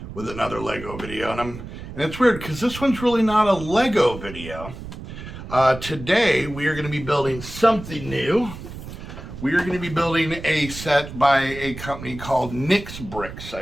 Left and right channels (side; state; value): right; noise; rumble, 12 dB below the sound